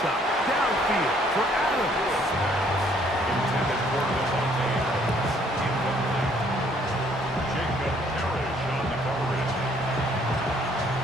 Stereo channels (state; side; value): normal; both; correlation 0.63